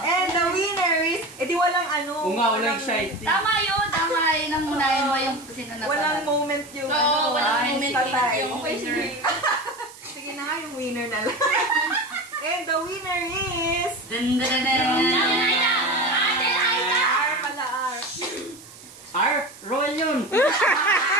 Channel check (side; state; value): right; noise; hiss, 20 dB below the sound